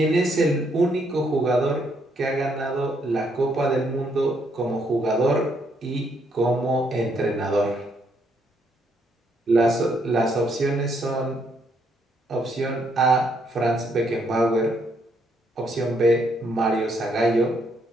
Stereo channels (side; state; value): both; normal; correlation 0.73